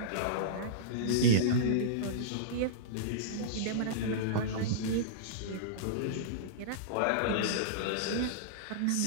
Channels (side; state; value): both; different; correlation -0.02